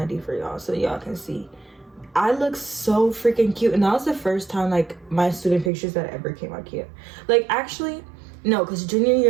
for y'all so y'all can see. I look so freaking cute, and that was the first time like my student pictures that ever came out cute. Like, actually no, because junior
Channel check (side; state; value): left; drops out; at 5.7 s